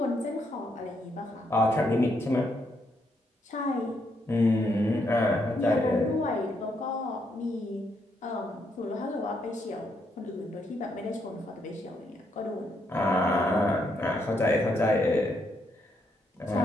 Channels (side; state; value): both; normal; correlation 0.76